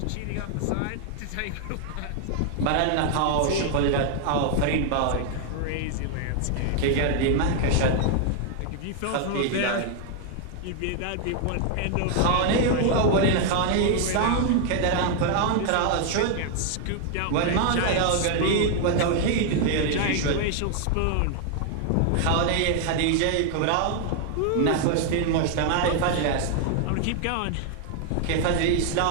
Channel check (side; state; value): both; different; correlation 0.00